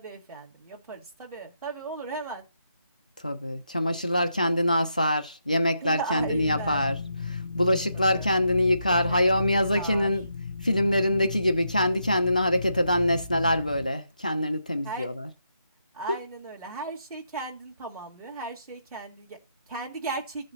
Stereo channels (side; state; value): both; inverted; correlation -0.81